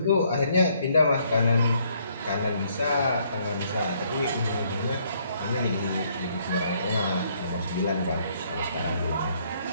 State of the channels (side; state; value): both; inverted; correlation -0.68